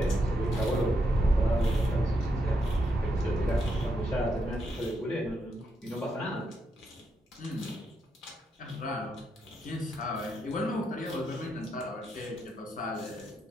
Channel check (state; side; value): normal; both; correlation 0.81